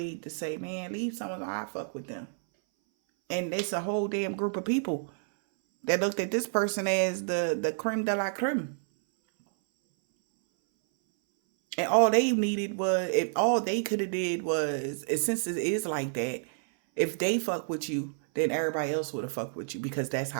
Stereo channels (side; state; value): left; silent; 58 dB below the other